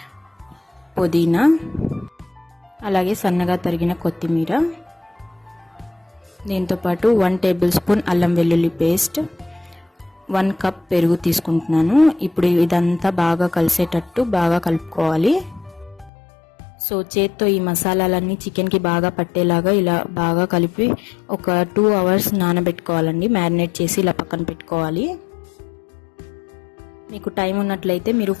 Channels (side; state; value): right; drops out; at 16.1 s